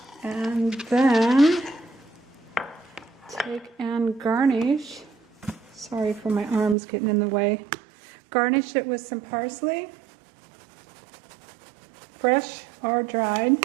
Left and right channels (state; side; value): drops out; left; at 6.8 s